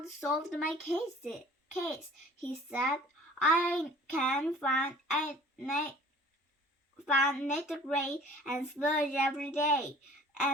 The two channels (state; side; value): normal; both; correlation 0.49